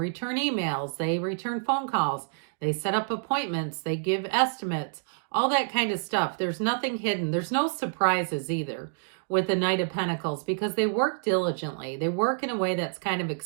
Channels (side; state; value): left; silent; digital silence